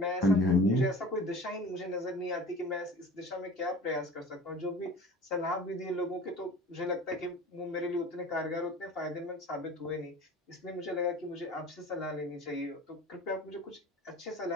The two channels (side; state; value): both; normal; correlation 0.41